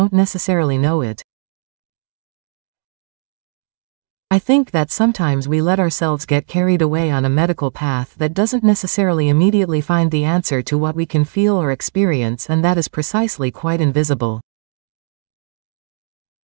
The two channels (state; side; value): silent; left; 63 dB below the other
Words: necessarily know it. I think that sometimes we let ourselves get carried away on a medical path that doesn't necessarily immediately find the answer to what we can feel or experience, and that is precisely quite invisible.